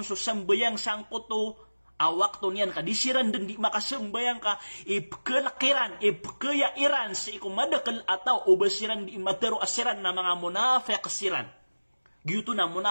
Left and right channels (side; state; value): both; inverted; correlation -1.00